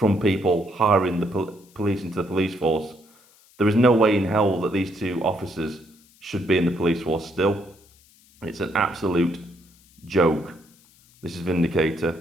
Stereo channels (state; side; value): noise; left; hiss, 29 dB below the sound